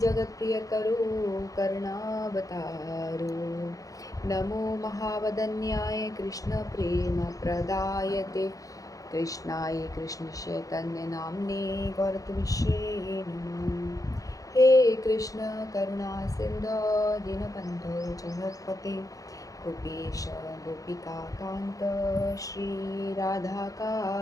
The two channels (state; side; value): late; right; 0.17 ms